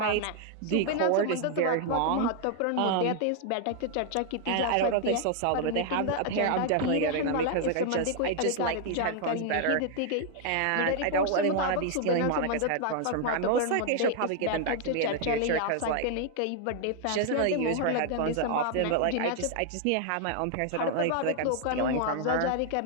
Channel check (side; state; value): both; different; correlation 0.00